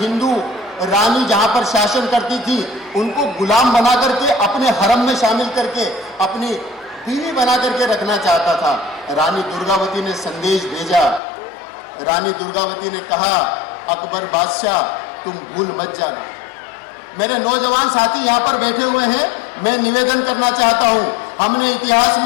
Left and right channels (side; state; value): right; drops out; at 11.2 s